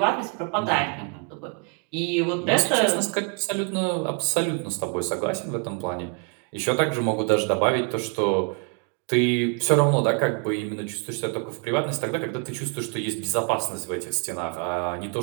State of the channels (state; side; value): quieter; left; 37.1 dB